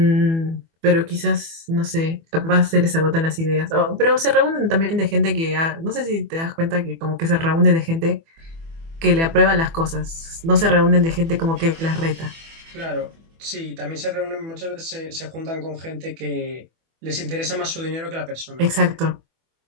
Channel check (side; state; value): left; late; 24 ms